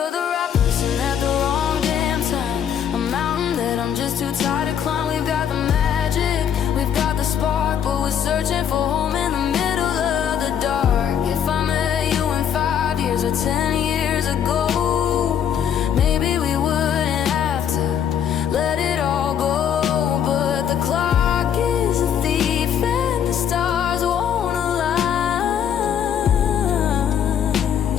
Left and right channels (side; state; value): right; quieter; 8.8 dB